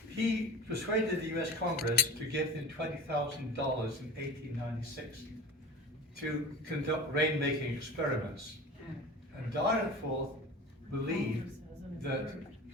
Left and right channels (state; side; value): normal; both; correlation 0.35